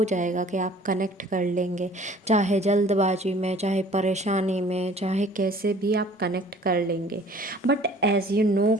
जाएगा कि आप कनेक्ट कर लेंगे, चाहे जल्दबाजी में, चाहे परेशानी में, चाहे कैसे भी आप कनेक्ट कर लेंगे। बट एज़ यू नो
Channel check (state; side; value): normal; both; correlation 0.51